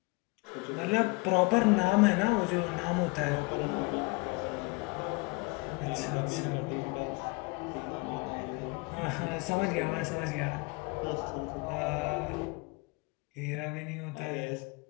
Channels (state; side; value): quieter; right; 27.1 dB